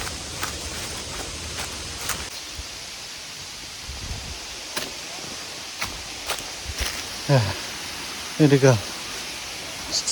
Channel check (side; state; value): both; identical; correlation 1.00